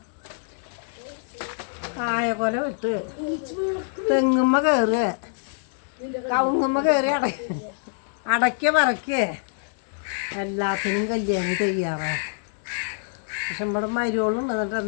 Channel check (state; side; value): silent; right; 61 dB below the other